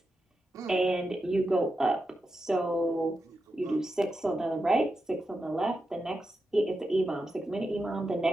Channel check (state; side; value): normal; both; correlation 0.88